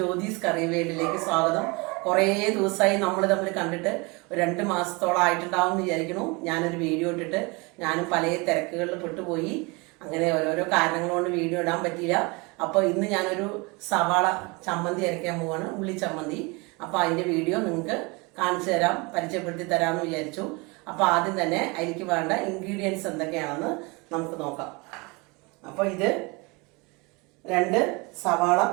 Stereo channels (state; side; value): quieter; left; 27.4 dB